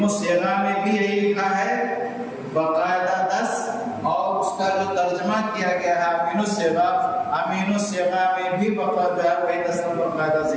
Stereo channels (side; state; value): both; identical; correlation 1.00